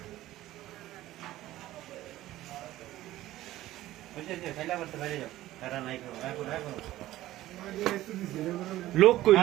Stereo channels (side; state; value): left; quieter; 15.3 dB